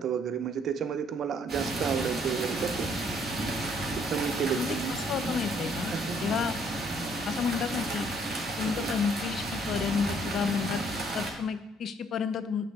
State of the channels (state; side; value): normal; both; correlation 0.64